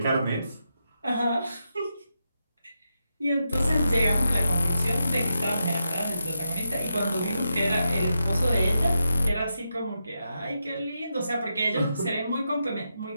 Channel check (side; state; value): both; inverted; correlation -0.86